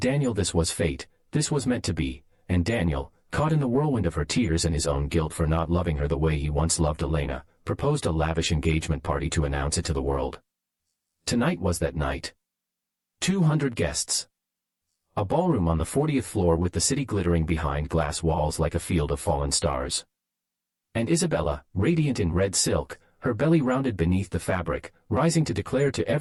this was fate, this was meant to be, and Daniel, caught in the whirlwind of her tears and his own guilt for not loving her the way he once loved Elena, proposed a lavish engagement party to announce it to the world. Tonight was that night. 200 guests. A ballroom on the 40th floor with the city glittering behind glass walls like a field of fallen stars. And Isabella, radiant in red silk, her belly rounded beneath the fabric, rising to declare to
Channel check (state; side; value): identical; both; correlation 1.00